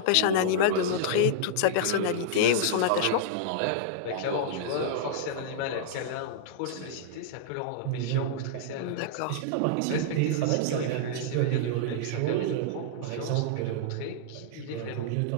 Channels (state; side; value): different; both; correlation -0.02